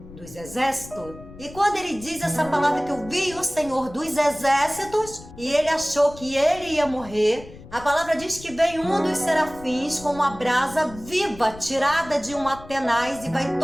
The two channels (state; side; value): noise; left; rumble, 17 dB below the sound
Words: dos Exércitos. E quando ele diz essa palavra que eu vi o Senhor dos Exércitos, e ele achou que ele ia morrer, a palavra diz que vem um dos serafins com uma brasa viva tirada de uma tenaz e vai